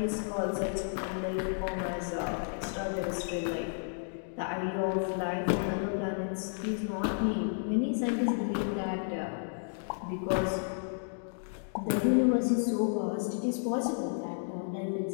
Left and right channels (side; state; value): right; silent; digital silence